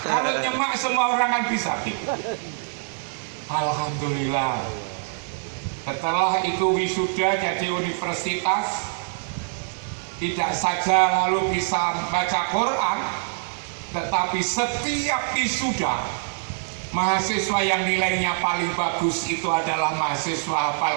Kalau nyemak semua orang kan bisa. Alhamdulillah. Setelah itu wisuda jadi universitas, tidak saja lalu bisa baca Quran, tetapi setiap wisuda mahasiswa yang nilainya paling bagus itu adalah mahasiswa hafal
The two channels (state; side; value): silent; left; digital silence